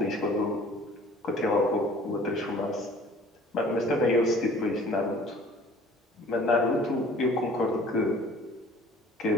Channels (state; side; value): normal; both; correlation 0.51